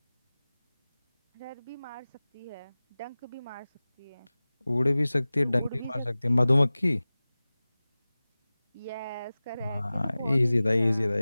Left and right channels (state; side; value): inverted; both; correlation -0.98